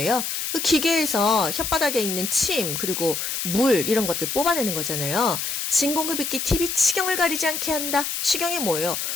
그 기계에서 혓바닥에 있는 침 그리고 물 이런 것들 뽑아내는 거잖아요. 진공흡입기 팁이 치경을 가리지 않게 한다. 치경이 뭐예요?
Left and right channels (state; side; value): noise; left; hiss, 3 dB below the sound